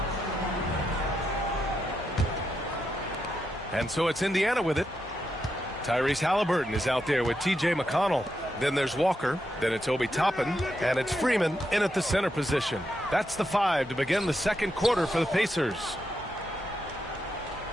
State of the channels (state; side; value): normal; both; correlation 0.83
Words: And so it's Indiana with it. Tyrese Halliburton is out there with T.J. McConnell. Then there's Walker. Then it's Obi Toppin. And it's Freeman in at the center position. That's the 5 to begin the second quarter for the Pacers.